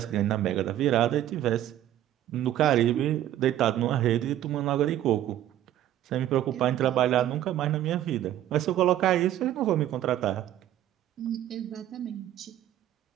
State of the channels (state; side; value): quieter; left; 12.4 dB